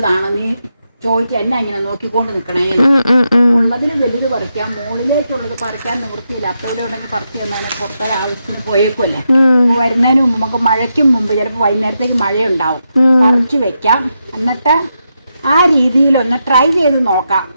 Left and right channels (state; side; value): inverted; both; correlation -0.85